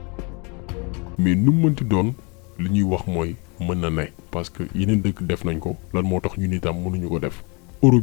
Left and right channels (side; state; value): right; quieter; 31.5 dB